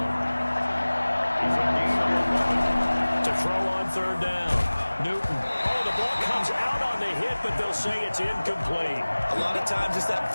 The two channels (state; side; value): inverted; both; correlation -1.00